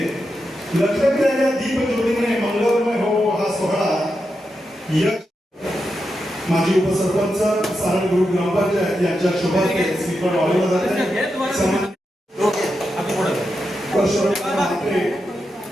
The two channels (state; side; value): normal; both; correlation 0.87